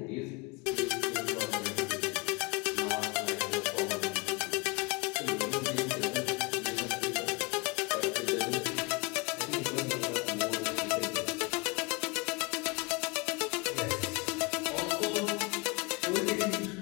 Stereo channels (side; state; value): right; quieter; 28.4 dB